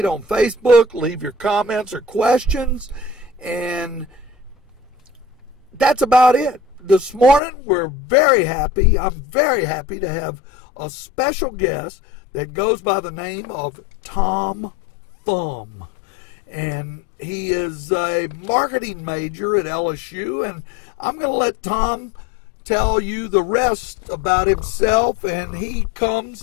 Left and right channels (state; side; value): drops out; right; at 7.4 s